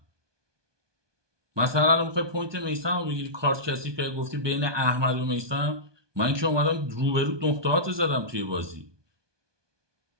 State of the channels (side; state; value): left; late; 1.2 ms